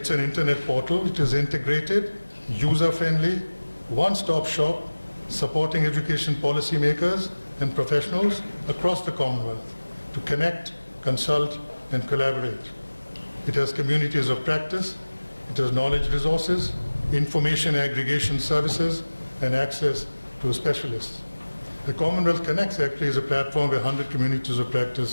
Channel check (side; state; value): both; inverted; correlation -1.00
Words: an internet portal. It is integrated, user-friendly, one-stop shop, supporting education policymakers and professionals across the Commonwealth to connect, consult, and collaborate. It has communities of practice. It has knowledge resources, information aggregation services, and access to specialists. The Commonwealth Connects actually is a platform where 100 communities of